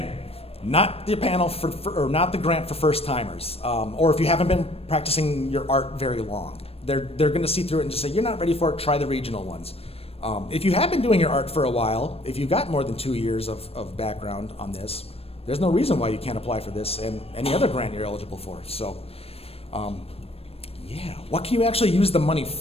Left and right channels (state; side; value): late; right; 0.28 ms